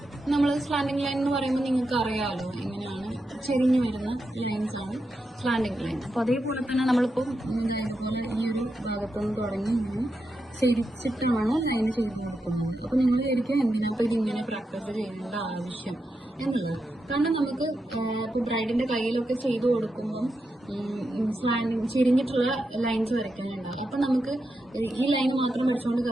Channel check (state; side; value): normal; both; correlation 0.87